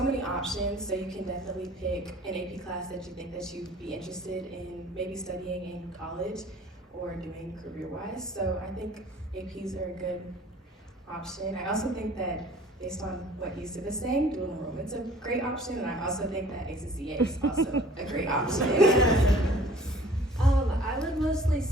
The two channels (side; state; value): both; normal; correlation 0.51